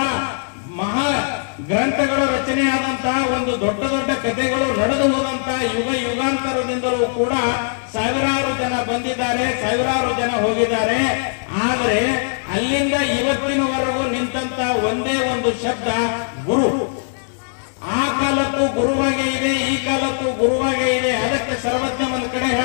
ಮಹಾ ಗ್ರಂಥಗಳ ರಚನೆ ಆದಂತಹ ಒಂದು ದೊಡ್ಡ ದೊಡ್ಡ ಕಥೆಗಳು ನಡೆದು ಹೋದಂತಹ ಯುಗಾಂತರದಿಂದಲೂ ಕೂಡ ಸಾವಿರಾರು ಜನ ಬಂದಿದ್ದಾರೆ, ಸಾವಿರಾರು ಜನ ಹೋಗಿದ್ದಾರೆ. ಆದರೆ ಅಲ್ಲಿಂದ ಇವತ್ತಿನವರೆಗೂ ನಿಂತ ಒಂದೇ ಒಂದು ಶಬ್ದ ಗುರು. ಆ ಕಾಲಕ್ಕೂ ಗುರುವಾಗೇ ಇದೆ, ಈ ಕಾಲಕ್ಕೂ ಗುರುವಾಗೇ ಇದೆ. ಅದಕ್ಕೆ ಸರ್ವಜ್ಞ ಒಂದು ಕಡೆ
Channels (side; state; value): right; silent; 64 dB below the other